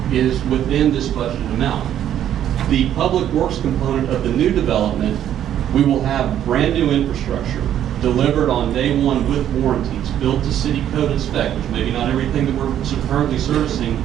is within this budgeted amount. The public works component of the new development, we will have brand new infrastructure delivered on day one with warranties, built to city code and spec, which maybe not everything that we're currently servicing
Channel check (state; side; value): quieter; left; 10.7 dB